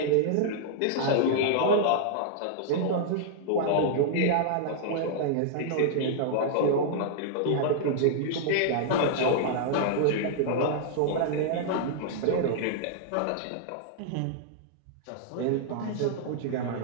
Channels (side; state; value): both; different; correlation -0.01